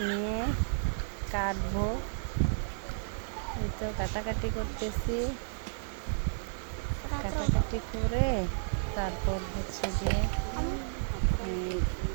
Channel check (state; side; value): silent; left; 56 dB below the other